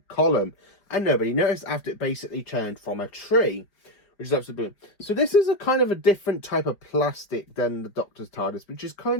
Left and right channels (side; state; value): right; late; 4.9 ms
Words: column, and nobody noticed after it basically turned from a tree, which is absolutely brilliant. So this is a kind of a different type of plastic than the Doctor's TARDIS, which is